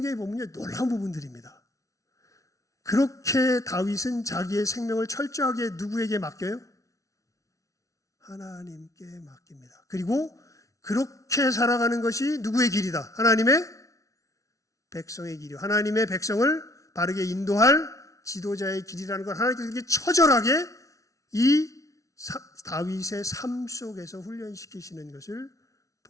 보면 놀라운 부분들입니다. 그렇게 다윗은 자기의 생명을 철저하게 누구에게 맡겨요? 하나님께 맡깁니다. 그리고 그렇게 살아가는 것이 누구의 길이다? 하나님의 백성의 길이요. 하나님의 백성을 바르게 인도할 지도자의 길이라는 걸 하나님께서 이렇게 처절하게 이 다윗의 삶 속에서 훈련시키시는 것을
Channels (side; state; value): right; late; 0.16 ms